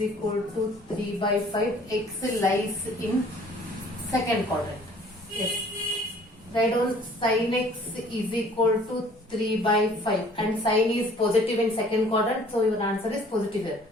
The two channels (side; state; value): both; normal; correlation 0.54